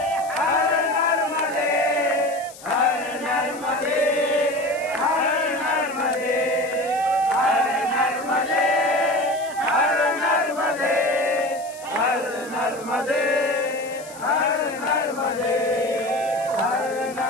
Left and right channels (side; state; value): left; noise; hiss, 18 dB below the sound